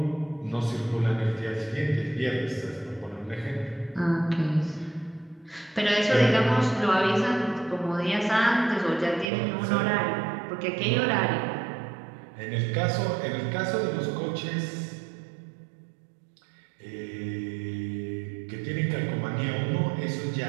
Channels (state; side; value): drops out; left; at 9.3 s